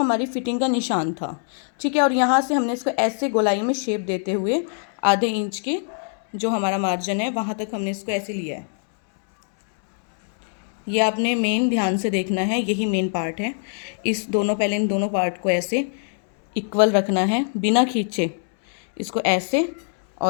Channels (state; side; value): silent; right; 64 dB below the other